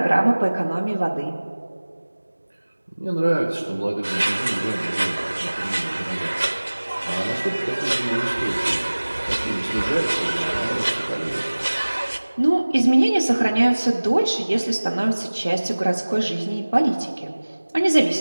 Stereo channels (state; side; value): inverted; both; correlation -1.00